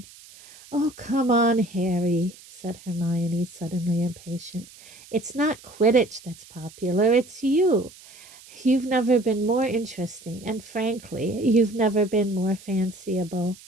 "Oh, come on, Harry," said Hermione, suddenly impatient. "It's not Quidditch that's popular, it's you. You've never been more interesting, and frankly, you've never been more fanciable."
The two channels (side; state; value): right; noise; hiss, 21 dB below the sound